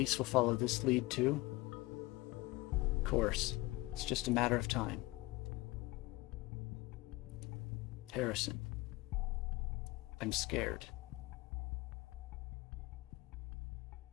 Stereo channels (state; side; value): quieter; right; 20.8 dB